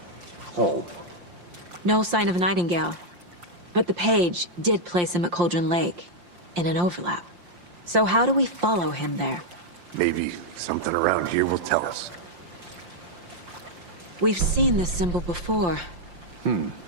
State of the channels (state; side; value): late; left; 5.7 ms